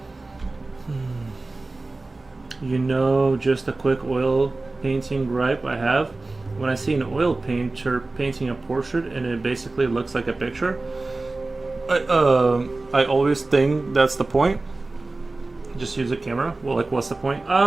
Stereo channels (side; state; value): left; quieter; 3.2 dB